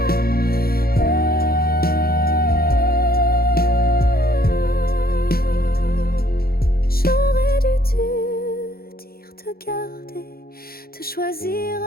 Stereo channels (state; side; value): late; right; 0.44 ms